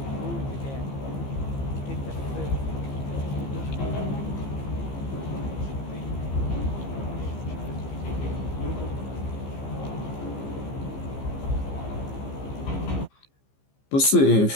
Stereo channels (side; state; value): right; late; 15 ms